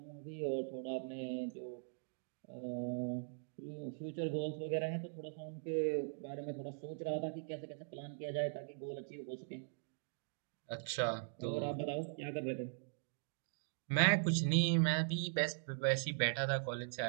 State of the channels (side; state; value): left; silent; digital silence